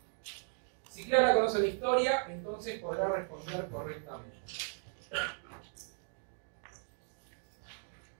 si Clara conoce la historia, entonces podrá responder correctamente.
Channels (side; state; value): left; silent; 53 dB below the other